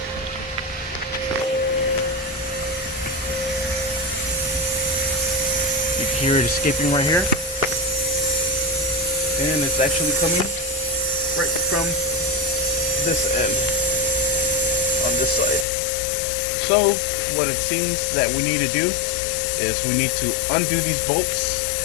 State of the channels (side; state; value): right; drops out; at 15.7 s